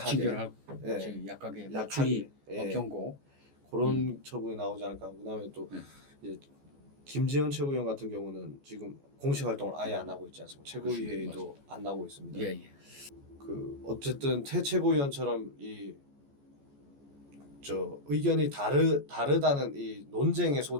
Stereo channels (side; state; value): left; late; 14 ms